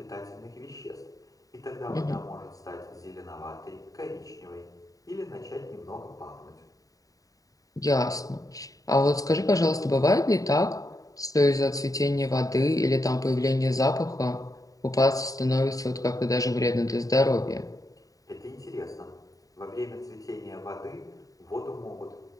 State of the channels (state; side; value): late; right; 0.17 ms